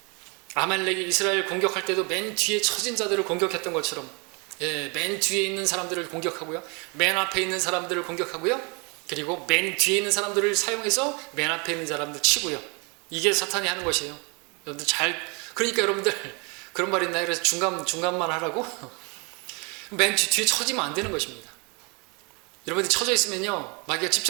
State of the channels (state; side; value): quieter; left; 31.5 dB